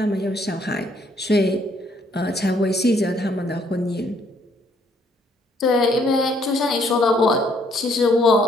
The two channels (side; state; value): both; normal; correlation 0.67